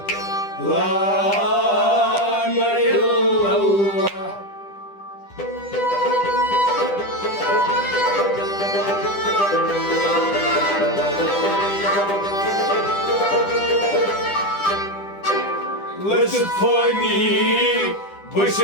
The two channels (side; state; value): right; late; 10 ms